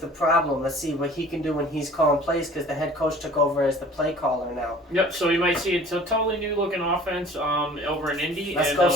problem. Let's see what he can do when he's calling plays, because the head coach took over as the play caller now. Yep, so you might see a totally new looking offense over in Indy. Let's go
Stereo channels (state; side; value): normal; both; correlation 0.47